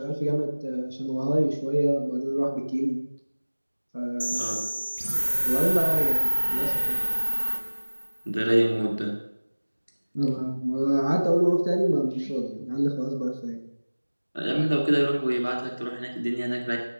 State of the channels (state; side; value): inverted; both; correlation -1.00